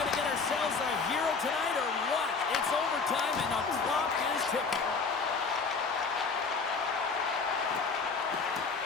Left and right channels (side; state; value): right; quieter; 4.7 dB